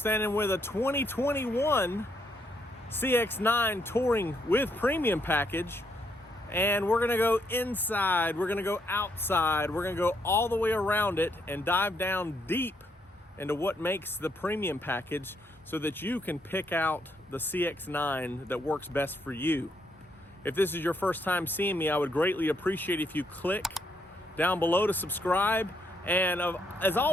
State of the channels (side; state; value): both; normal; correlation 0.75